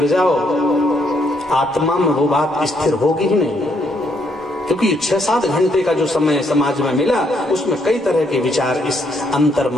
जाओ, आत्मा में वो बात स्थिर होगी ही नहीं, क्योंकि 6-7 घंटे का जो समय समाज में मिला, उसमें कई तरह के विचार इस अंतर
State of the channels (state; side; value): normal; both; correlation 0.73